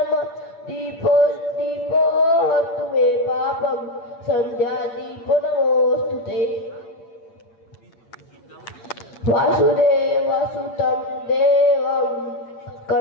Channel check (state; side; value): late; right; 8.7 ms